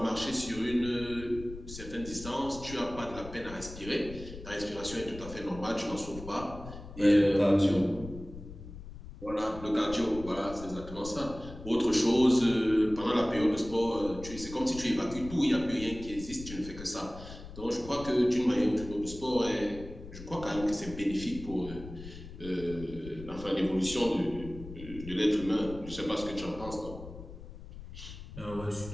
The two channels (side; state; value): left; noise; rumble, 13 dB below the sound